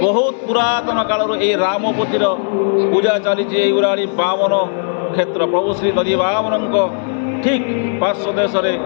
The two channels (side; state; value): right; silent; 69 dB below the other